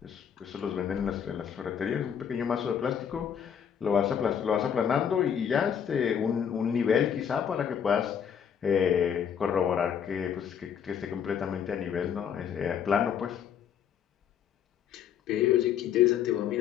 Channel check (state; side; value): quieter; right; 8.2 dB